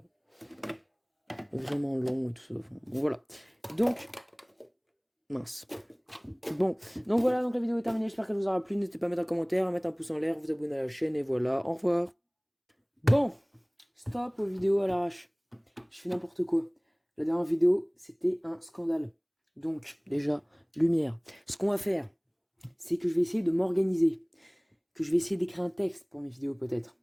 long et tout ça. Enfin, bon, voilà. Donc, mince. Bon, donc voilà, donc la vidéo est terminée, j'espère qu'elle vous aura plu, n'hésitez pas à mettre un commentaire, à mettre un pouce en l'air, vous abonner à la chaîne, et voilà, au revoir. Bon, stop aux vidéos à l'arrache, je fais n'importe quoi. La dernière vidéo, c'était un scandale. Donc, déjà, lumière. Ce qu'on va faire, c'est que je vais essayer de m'organiser, que je vais essayer d'écrire un texte pour mes vidéos peut-être,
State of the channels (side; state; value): both; identical; correlation 1.00